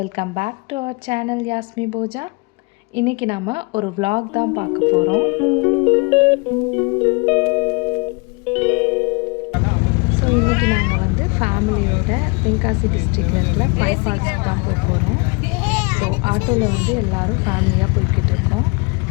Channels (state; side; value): quieter; right; 30.6 dB